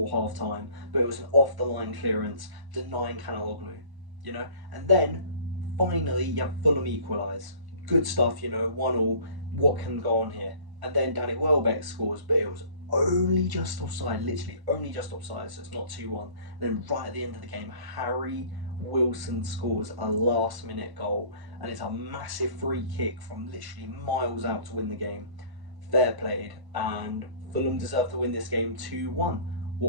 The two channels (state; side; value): late; left; 1.1 ms